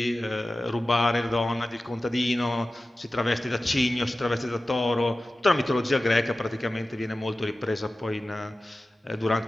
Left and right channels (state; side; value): normal; both; correlation 0.95